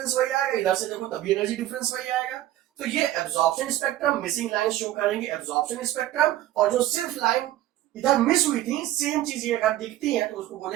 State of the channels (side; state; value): left; quieter; 14.0 dB